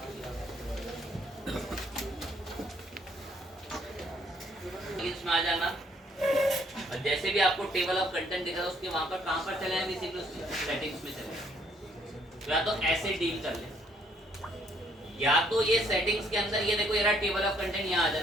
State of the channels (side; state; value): both; normal; correlation 0.66